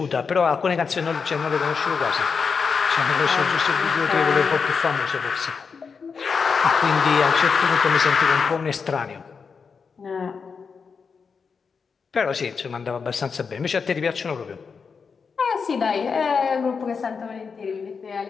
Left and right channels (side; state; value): right; quieter; 5.6 dB